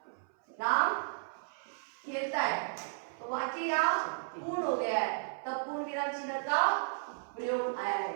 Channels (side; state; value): left; silent; 55 dB below the other